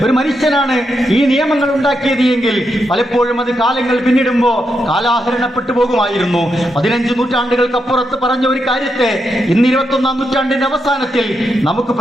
ഒരു മനുഷ്യനാണ് ഈ നിയമങ്ങൾ ഉണ്ടാക്കിയത് എങ്കിൽ പലപ്പോഴും അത് കാലങ്ങൾ പിന്നിടുമ്പോൾ കാലാഹരണപ്പെട്ടു പോകുമായിരുന്നു. 15 നൂറ്റാണ്ടുകൾക്കപ്പുറത്ത് പറഞ്ഞ ഒരു കാര്യത്തെ ഇന്ന് 21-ാം നൂറ്റാണ്ടിന്റെ അവസാനത്തിൽ നമുക്ക്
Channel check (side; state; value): both; normal; correlation 0.83